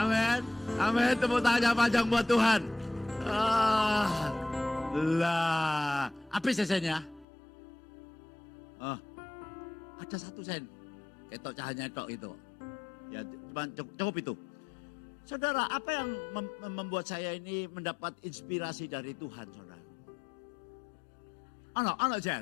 Amin. Tepuk tangan panjang buat Tuhan. Lah. Apa sennya? Ada 1 sen. Ketok cahayanya tok itu. Ya, cuma cukup itu. Saudara, apa yang membuat saya ini mendapat inspirasi dari Tuhan, saudara? Anak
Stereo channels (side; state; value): right; drops out; at 7.2 s